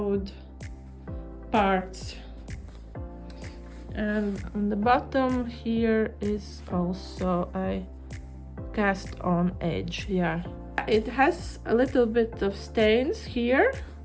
parts, and on the bottom here is also a cast on edge. Yeah, it has a little bit of stains here,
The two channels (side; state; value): both; identical; correlation 1.00